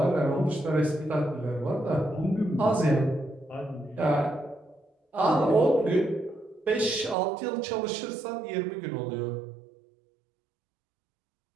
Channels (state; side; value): drops out; left; at 7.2 s